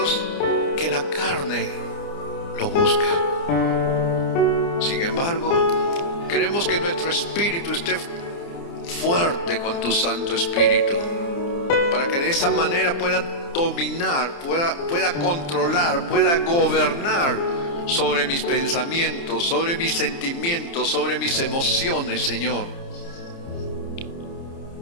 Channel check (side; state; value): right; late; 29 ms